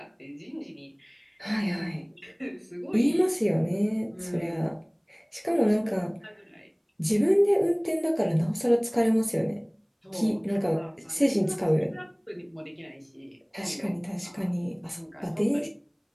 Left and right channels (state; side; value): identical; both; correlation 1.00